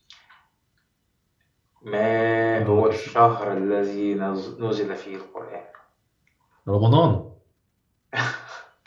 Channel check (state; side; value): identical; both; correlation 1.00